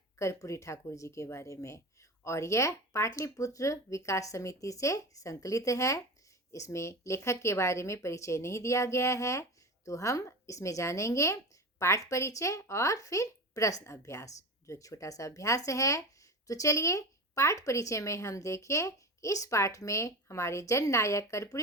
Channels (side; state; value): both; normal; correlation 0.27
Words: कर्पूरी ठाकुर जी के बारे में। और यह पाटलिपुत्र विकास समिति से संकलित है। इसमें लेखक के बारे में परिचय नहीं दिया गया है, तो हम इसमें जानेंगे पाठ परिचय और फिर प्रश्न अभ्यास, जो एक छोटा सा अभ्यास है। तो चलिए पाठ परिचय में हम देखें इस पाठ में हमारे जननायक